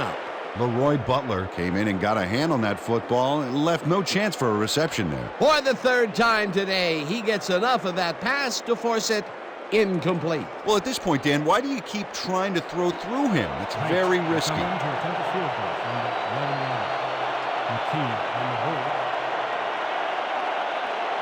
Leroy Butler came in and got a hand on that football and left no chance for a reception there. For the third time today, he gets enough of that pass to force it incomplete. Well, at this point, Dan, why do you keep trying to throw through him? It's very risky. To attempt a field goal from the 11-yard. McKee on the hold.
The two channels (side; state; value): both; identical; correlation 1.00